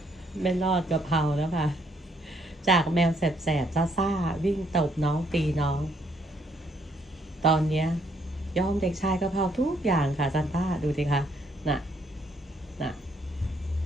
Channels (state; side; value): normal; both; correlation 0.69